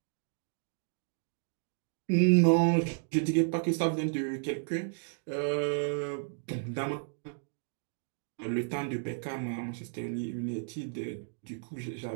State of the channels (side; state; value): left; silent; digital silence